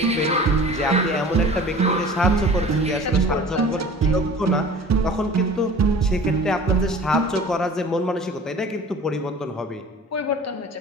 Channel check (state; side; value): normal; both; correlation 0.43